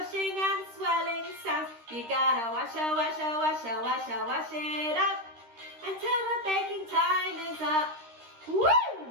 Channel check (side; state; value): left; late; 13 ms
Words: and swirling sounds. You gotta wash it up until the baking time is up.